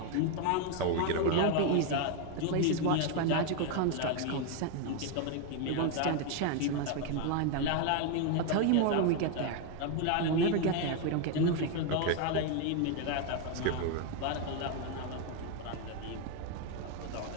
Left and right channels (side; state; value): both; different; correlation 0.01